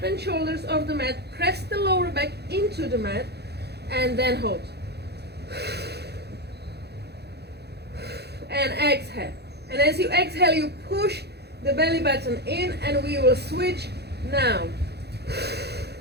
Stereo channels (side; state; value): left; late; 0.48 ms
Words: and shoulders off the mat, press the lower back into the mat, and then hold. And exhale. And as you exhale, you push the belly button in, and we will switch now.